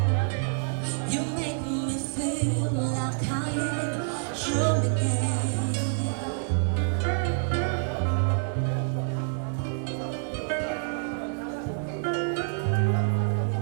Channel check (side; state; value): left; silent; digital silence